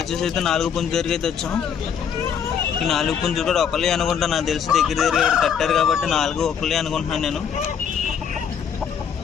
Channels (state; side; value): quieter; right; 7.6 dB